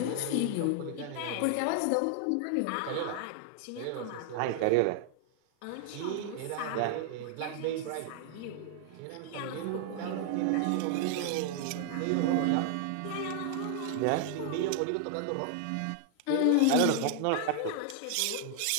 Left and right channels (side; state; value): both; different; correlation 0.00